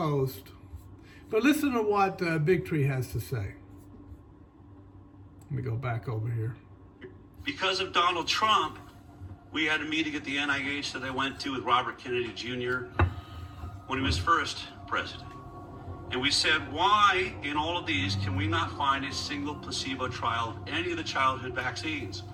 But listen to what Bigtree has to say. Let me go back over here. Because of Donald Trump, we had a meeting at the NIH that I went to with Robert Kennedy Jr. when he was first president. And we said, why in all of these can we not find a single placebo trial of any of the childhood vaccines?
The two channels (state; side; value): identical; both; correlation 1.00